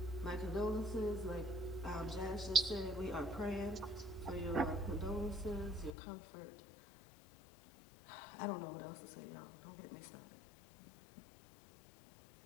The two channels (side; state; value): right; drops out; at 6.0 s